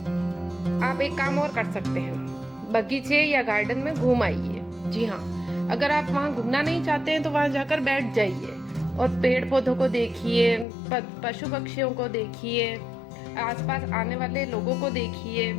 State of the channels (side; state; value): right; drops out; at 10.7 s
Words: आप एक काम और कर सकते हैं, बगीचे या गार्डन में घूम आइए। जी हाँ, अगर आप वहाँ घूमना नहीं चाहते हैं तो वहाँ जाकर बैठ जाइए और पेड़ पौधों को देखिए, पशु पक्षियों को देखिए, आसपास आने वाले लोगों को देखिए।